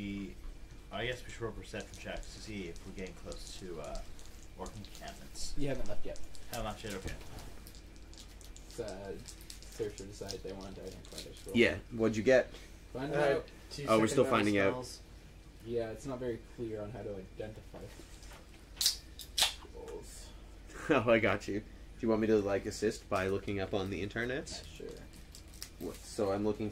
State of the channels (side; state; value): both; identical; correlation 1.00